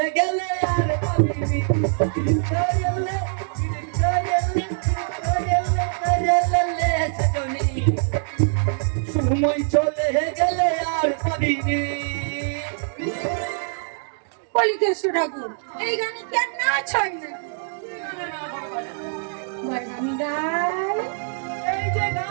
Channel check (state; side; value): silent; left; digital silence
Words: গেলে আর পাবিনি করেলে সজনী সময় চলে গেলে আর পাবিনি। বলি কেষ্ট ঠাকুর, এই গানে কি আর নাচ হয় না? আমি গাই। এই যে